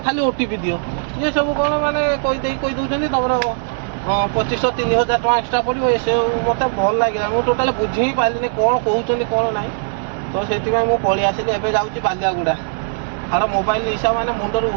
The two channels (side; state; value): left; silent; 67 dB below the other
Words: ଖାଲି ଓଟିପି ଦିଅ ଇଏ ସବୁ କ'ଣ ମାନେ କହି ଦେଉଛନ୍ତି ତମର 2500-3000 ଟଙ୍କା ଏକ୍ସଟ୍ରା ପଡ଼ିବ ସେ ମୋତେ ଭଲ ଲାଗିଲା ମୁଁ ଟୋଟାଲି ବୁଝି ହିଁ ପାରିଲିନି କ'ଣ କହୁଛନ୍ତି କ'ଣ ନାହିଁ ତ ସେଥିପାଇଁ ମୁଁ ପଳେଇ ଆସିଲି ଏବେ ଯାଉଛି ବାଲିଆଗୁଡ଼ା ଆର ମୋବାଇଲ ହିସାବ ମାନେ ମୁଣ୍ଡରୁ